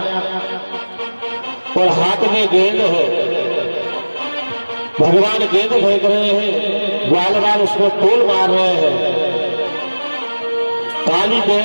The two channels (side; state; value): both; inverted; correlation -1.00